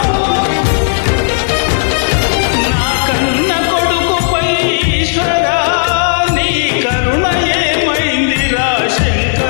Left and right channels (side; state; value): right; silent; digital silence